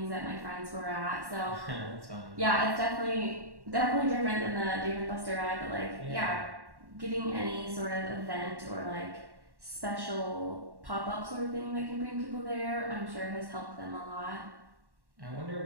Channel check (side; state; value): left; late; 1.1 ms